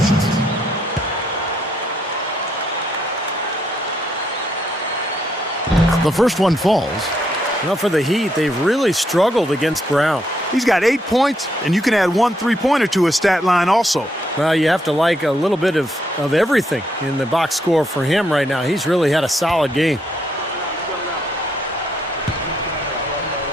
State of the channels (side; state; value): both; normal; correlation 0.75